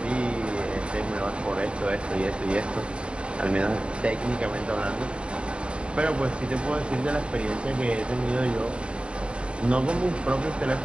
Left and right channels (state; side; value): late; left; 0.055 ms